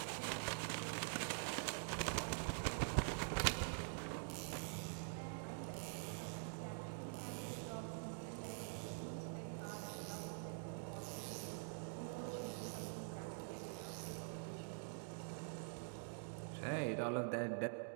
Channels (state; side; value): silent; left; digital silence